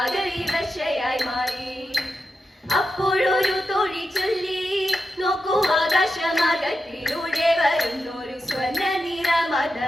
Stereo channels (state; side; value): normal; both; correlation 0.89